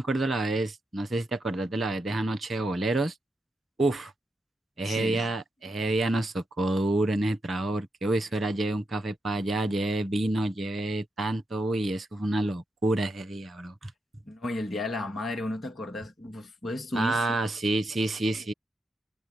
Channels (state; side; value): normal; both; correlation 0.84